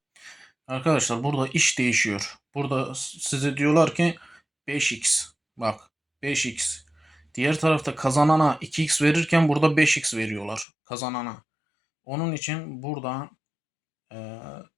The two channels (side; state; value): right; drops out; at 10.7 s